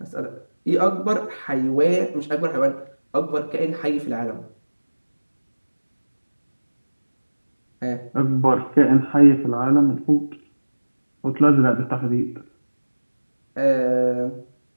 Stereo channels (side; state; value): both; inverted; correlation -1.00